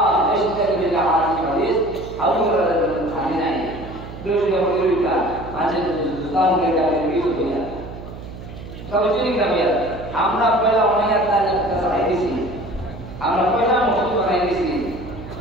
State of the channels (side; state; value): right; noise; hum, 13 dB below the sound